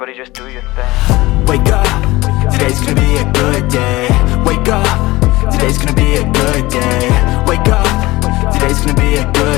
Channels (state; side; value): quieter; right; 19.6 dB